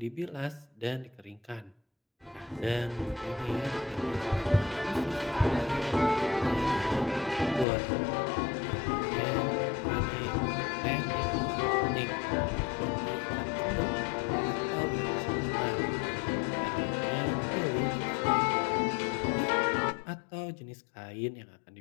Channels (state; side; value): drops out; right; at 7.7 s